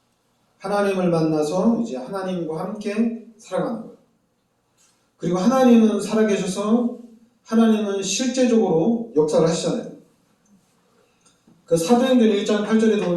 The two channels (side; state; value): both; identical; correlation 1.00